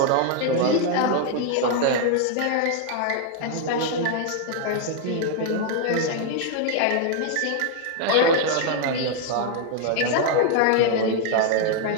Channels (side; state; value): both; different; correlation 0.00